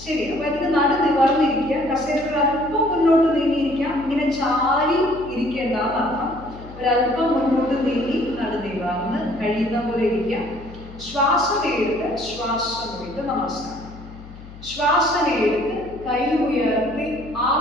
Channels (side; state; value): left; noise; hum, 17 dB below the sound